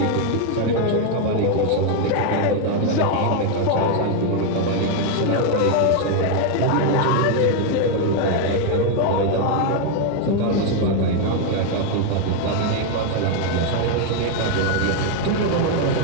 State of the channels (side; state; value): both; different; correlation 0.01